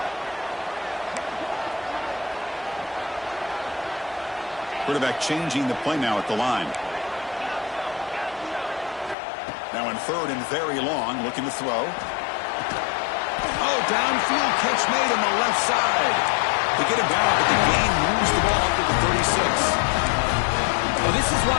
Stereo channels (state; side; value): drops out; right; at 9.2 s